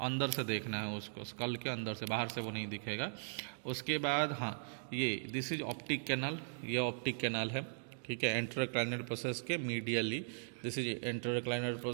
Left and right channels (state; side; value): silent; left; digital silence